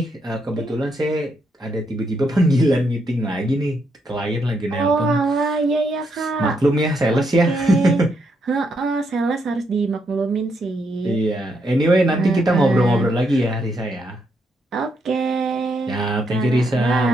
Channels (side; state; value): both; normal; correlation 0.78